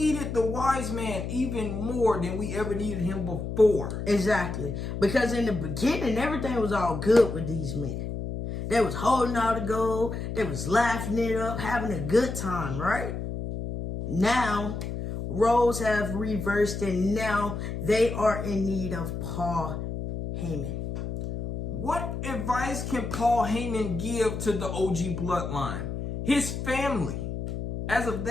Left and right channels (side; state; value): left; noise; hum, 5 dB below the sound